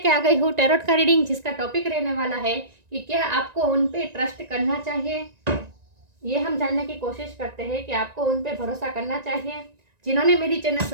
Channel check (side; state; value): left; late; 1.9 ms